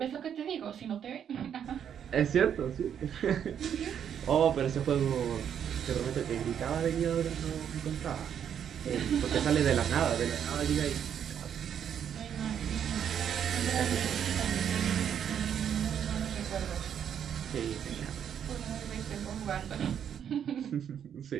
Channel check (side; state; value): left; quieter; 8.7 dB